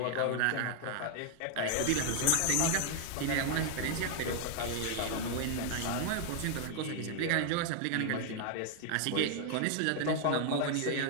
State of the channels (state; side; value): different; both; correlation 0.00